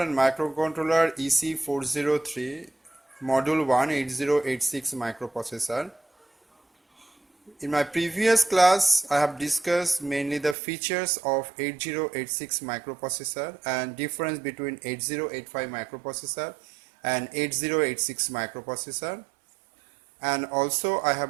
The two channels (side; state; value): left; drops out; at 10.6 s